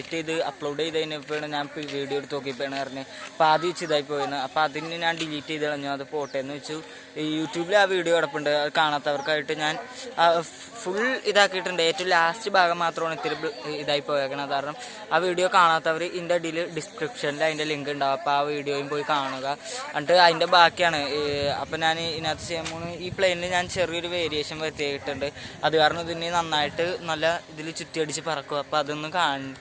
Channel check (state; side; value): identical; both; correlation 1.00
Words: ചെയ്ത് അപ്ലോഡ് ചെയ്തതിനപ്പോഴാണ് ഞാൻ വീഡിയോ എടുത്ത് നോക്കിയപ്പോഴാണ് പറഞ്ഞത് അപ്പോൾ ആദ്യം വെച്ച് ഇതായി പോയിരുന്നു. അപ്പോൾ അതിന് ഞാൻ ഡിലീറ്റ് ചെയ്ത് കളഞ്ഞു. അത് പോട്ടെ എന്ന് വെച്ചു. യൂട്യൂബിൽ ആ വീഡിയോ കിടപ്പുണ്ട്. അത് കാണാത്തവർക്കായിട്ട് ഞാൻ ഫുൾ ഇതാക്കിയിട്ടുണ്ട്. ഏറ്റവും ലാസ്റ്റ് ഭാഗം മാത്രമാണ് ഇത്തിരി ഇതായി പോയേക്കണത്. കാരണം ആ വീഡിയോ കാണാത്തവർ ഇതിൻ്റെ അടിയിൽ ഡിസ്ക്രിപ്ഷനിൽ അതിൻ്റെ ലിങ്ക് ഉണ്ടാവും. അപ്പോൾ ആ വീഡിയോയും പോയി കാണുക. എന്നിട്ട് അതിൻ്റെ ബാക്കിയാണ്. അപ്പോൾ ഞാൻ ഇതിനകത്ത് ചെയ്യുമ്പോൾ ഈ പ്ലെയിനിൽ ഞാൻ ചെറിയൊരു വേരിയേഷൻ വരുത്തിയിട്ടുണ്ട്. അത് കാരണം ഇതിന് നന്നായിട്ട് നല്ല ഇതിൽ ചുറ്റിയടിച്ച് പറക്കും. അപ്പോൾ അതൊന്ന്